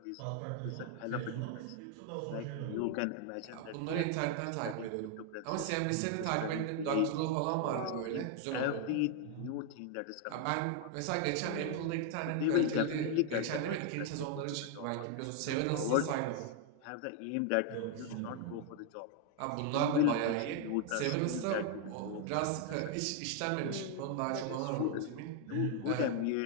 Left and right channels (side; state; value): both; different; correlation 0.00